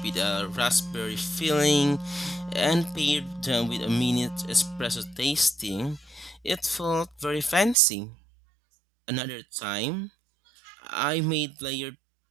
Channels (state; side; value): drops out; left; at 7.8 s